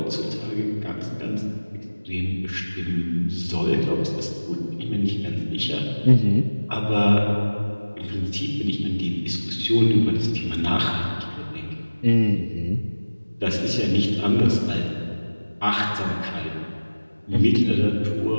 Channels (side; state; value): both; inverted; correlation -1.00